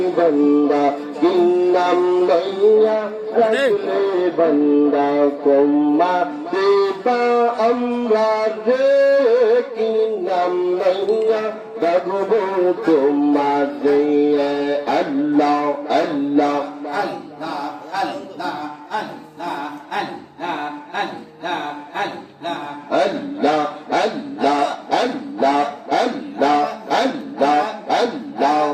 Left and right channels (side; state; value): both; identical; correlation 1.00